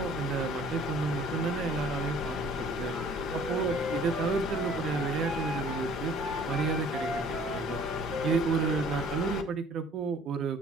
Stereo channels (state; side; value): normal; both; correlation 0.53